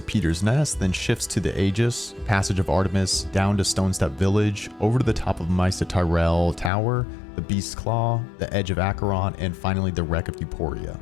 Peter's Nest, then shifts to the Aegis, Passage of Artemis, down to Stonestep Village, over to the top of Maester Tyrell Tower, the Beast's Claw, the Edge of Acheron, and finally the Wreck of Euphoria.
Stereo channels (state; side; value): drops out; right; at 6.7 s